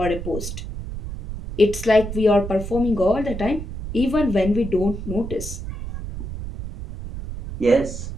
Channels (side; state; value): right; noise; rumble, 8 dB below the sound